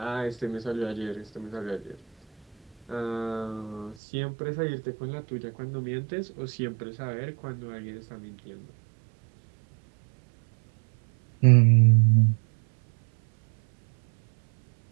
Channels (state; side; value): drops out; left; at 4.0 s